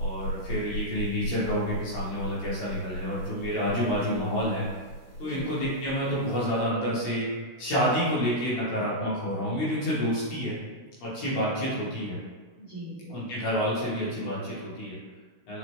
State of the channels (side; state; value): right; late; 16 ms